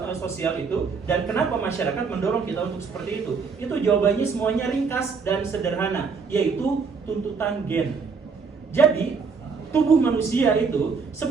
sosial itu, dan kenapa masyarakat mendorong kita untuk seperti itu? Itu jawabannya semuanya ringkas dan sederhana, yaitu tuntutan gen. Jadi tubuh manusia itu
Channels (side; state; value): left; quieter; 5.2 dB